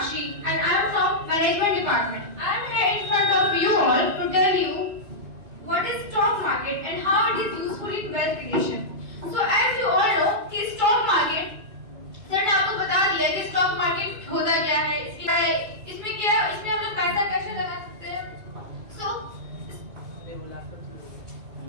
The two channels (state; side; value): late; left; 2.3 ms